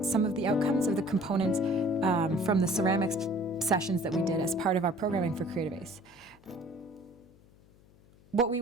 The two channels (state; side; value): noise; left; hum, 27 dB below the sound